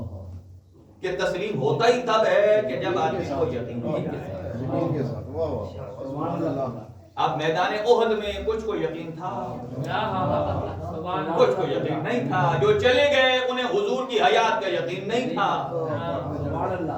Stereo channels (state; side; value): identical; both; correlation 1.00